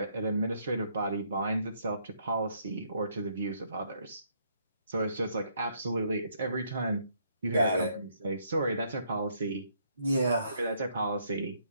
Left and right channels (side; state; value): both; inverted; correlation -0.70